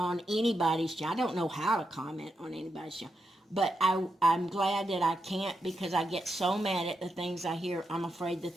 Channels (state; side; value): normal; both; correlation 0.85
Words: anybody's channel. I don't know how to comment on anybody's channel. But I'm glad that I can't because I get so mad at the things I hear. I'm afraid the